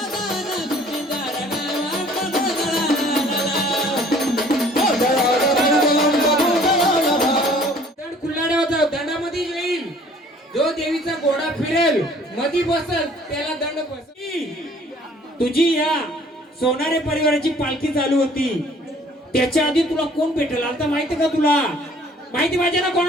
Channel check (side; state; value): both; normal; correlation 0.55